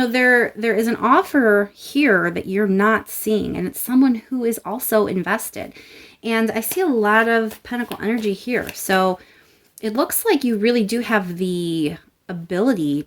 is an offer here that you're not seeing, and it's someone who is also invested. And I see a lot of Pentacle energy here. So it looks like you really do have the ability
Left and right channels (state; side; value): identical; both; correlation 1.00